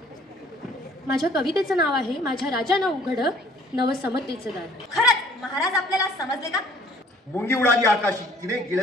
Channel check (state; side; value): normal; both; correlation 0.55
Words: माझ्या कवितेचं नाव आहे माझ्या राजानं उघड नवसमतेचं दार. खरंच महाराज आपल्याला समजले का? मुंगी उडाली आकाशी तिने